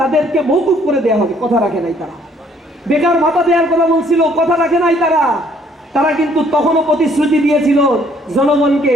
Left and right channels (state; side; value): normal; both; correlation 0.62